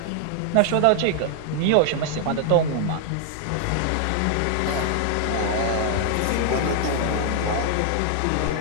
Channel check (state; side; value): different; both; correlation 0.00